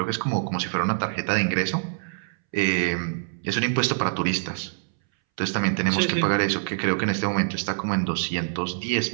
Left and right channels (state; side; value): silent; left; 62 dB below the other